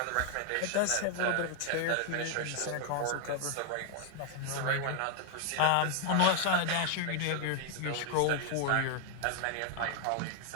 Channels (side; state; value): both; different; correlation 0.00